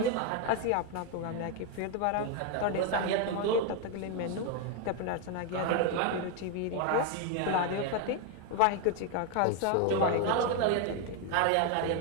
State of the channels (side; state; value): both; different; correlation 0.01